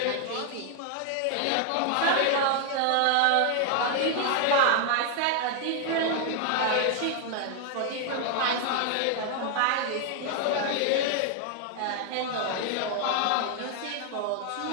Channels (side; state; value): both; different; correlation 0.00